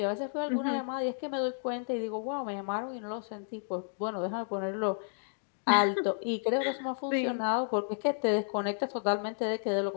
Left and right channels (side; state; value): right; silent; digital silence